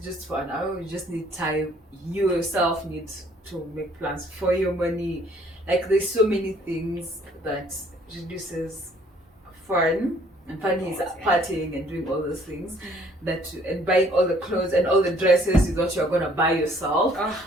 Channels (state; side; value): normal; both; correlation 0.60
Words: just for an hour, you just need time. You yourself need to make plans for your money. Like there's so many things that reduces fun, and fun is partying and doing all those things, and buying all the clothes and all the dresses you thought you were gonna buy yourself. Oh